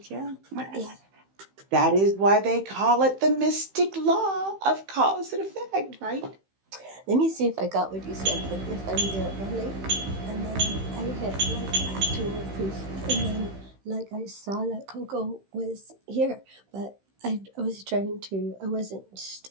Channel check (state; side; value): late; left; 15 ms